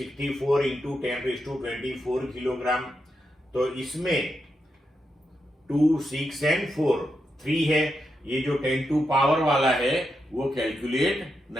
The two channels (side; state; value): both; normal; correlation 0.85